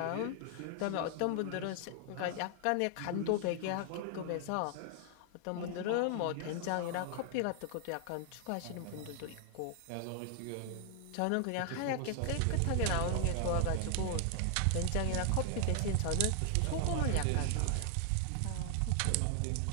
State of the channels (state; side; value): different; both; correlation 0.00